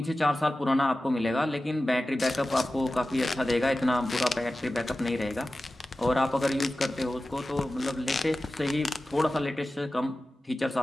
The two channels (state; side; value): normal; both; correlation 0.95